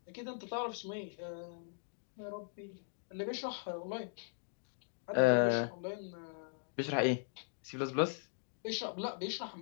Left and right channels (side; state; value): right; silent; digital silence